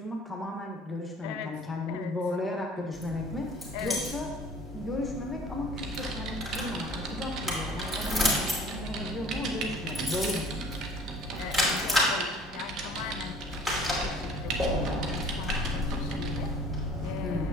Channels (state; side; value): normal; both; correlation 0.50